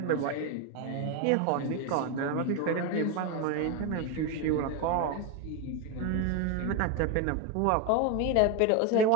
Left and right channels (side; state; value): both; different; correlation 0.02